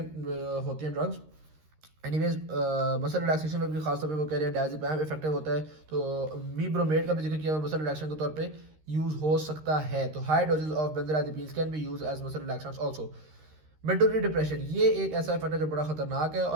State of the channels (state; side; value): late; left; 13 ms